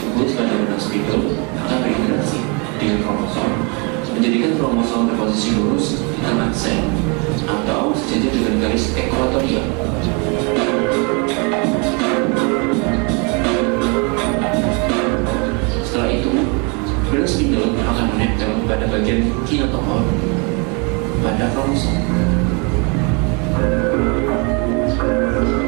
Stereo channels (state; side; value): quieter; left; 32.7 dB